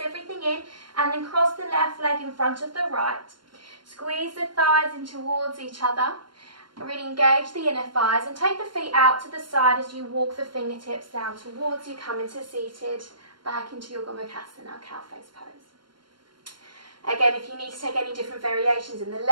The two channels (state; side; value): late; left; 0.72 ms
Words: everything in, and then cross the left leg in front of the right. Squeeze the thighs in towards each other. Really engage the inner thighs and take the feet out to the side as you walk the fingertips down towards you, come into seated, back into your Gomukhasana, cow face pose. Again, if you need to take any different variations in the